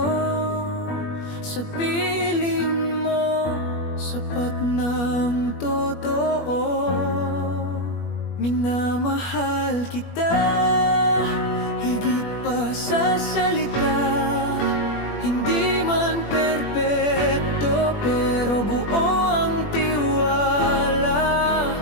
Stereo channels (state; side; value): late; right; 21 ms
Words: sa piling mo sapat ng totoo. Minamahal kita higit pa sa salita. Hindi man perpekto pero buo ang tiwala.